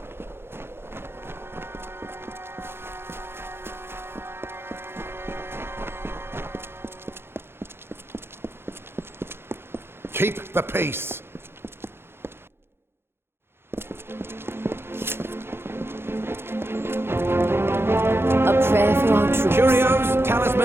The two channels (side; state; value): left; late; 0.11 ms